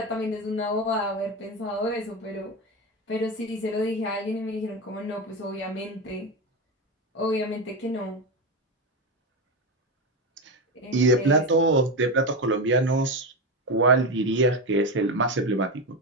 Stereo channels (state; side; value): normal; both; correlation 0.16